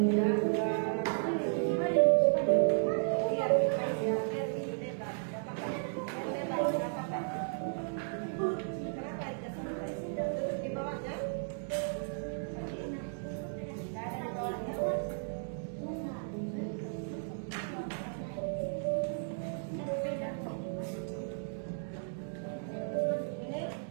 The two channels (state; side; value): silent; left; digital silence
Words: bebas ya, biar ini bebas. Gak apa-apa. Biar bebas, gak apa-apa. Kenapa itu sampai? Duduk di bawahnya. Gak ada di bawahnya. Ini